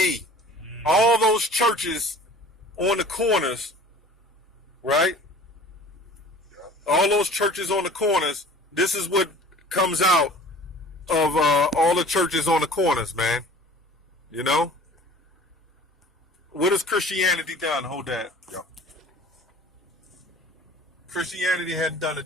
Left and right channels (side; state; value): both; normal; correlation 0.46